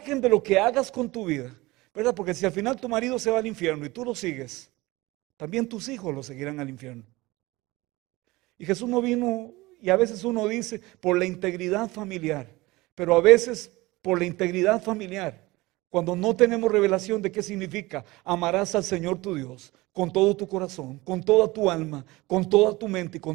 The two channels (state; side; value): quieter; left; 20.9 dB